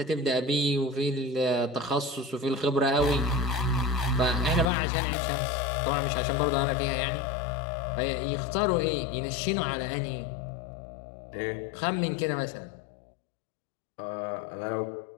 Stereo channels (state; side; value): drops out; right; at 4.7 s